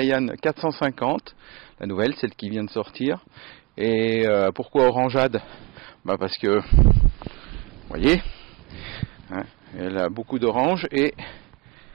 450, la nouvelle, celle qui vient de sortir. Et pourquoi Orangeade? Parce que, vous voyez, hein, elle a beaucoup d'orange et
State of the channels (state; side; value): quieter; left; 24.3 dB